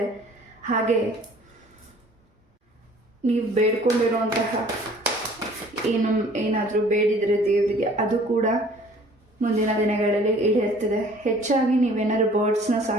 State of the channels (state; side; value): normal; both; correlation 0.52